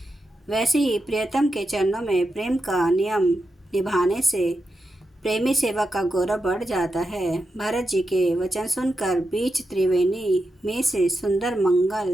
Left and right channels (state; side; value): normal; both; correlation 0.88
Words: वैसे ही प्रियतम के चरणों में प्रेम का नियम निभाने से प्रेमी सेवा का गौरव बढ़ जाता है। भरत जी के वचन सुनकर बीच त्रिवेणी में से सुंदर